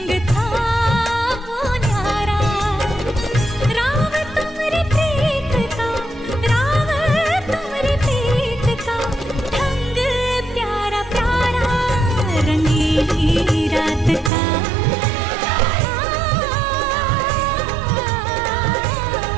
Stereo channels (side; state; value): left; drops out; at 14.3 s